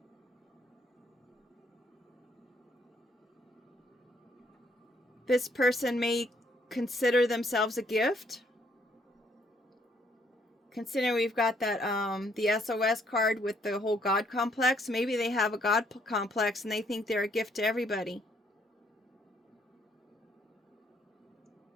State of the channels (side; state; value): both; normal; correlation 0.69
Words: This person may consider themselves a gift. Considering we've got that the SOS card with the whole God complex, maybe they have a God complex and they think they're a gift to everybody.